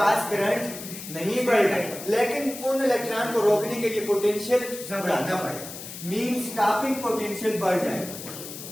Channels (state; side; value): noise; left; hiss, 11 dB below the sound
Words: करंट नहीं बढ़ेगा, लेकिन उन इलेक्ट्रॉन को रोकने के लिए पोटेंशियल बढ़ाना पड़ेगा, मीन स्टॉपिंग पोटेंशियल बढ़ जाएगा।